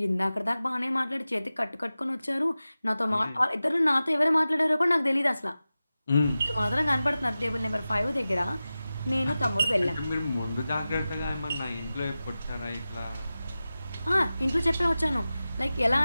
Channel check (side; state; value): both; inverted; correlation -0.95